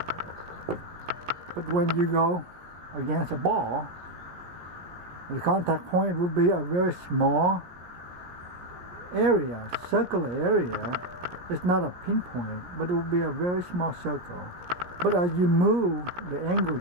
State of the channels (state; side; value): late; left; 17 ms